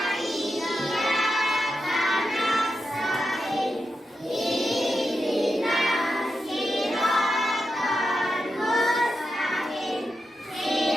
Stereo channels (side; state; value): both; normal; correlation 0.88